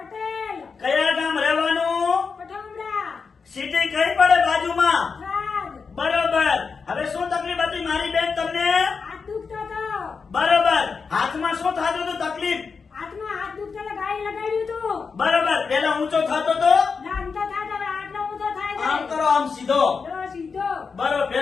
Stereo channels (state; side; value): quieter; right; 5.2 dB